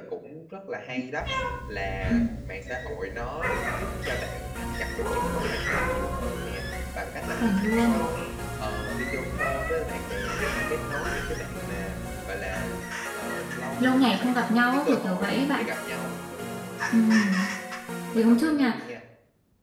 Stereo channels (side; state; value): both; identical; correlation 1.00